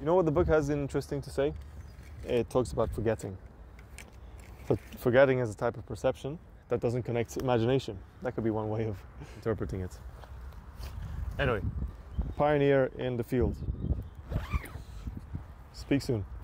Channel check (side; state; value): both; identical; correlation 1.00